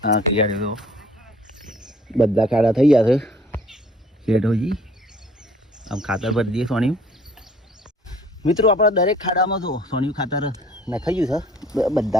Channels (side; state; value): both; normal; correlation 0.55